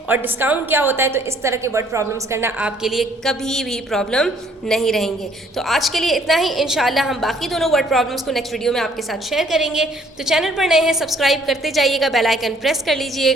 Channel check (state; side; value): normal; both; correlation 0.62